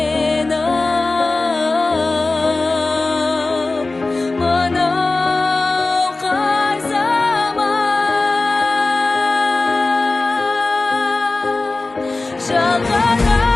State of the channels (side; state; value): right; quieter; 3.3 dB